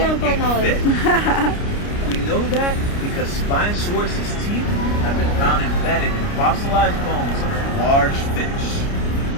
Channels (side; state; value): right; late; 29 ms